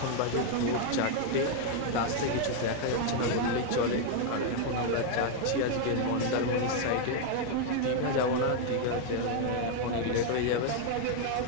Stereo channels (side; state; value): both; different; correlation 0.00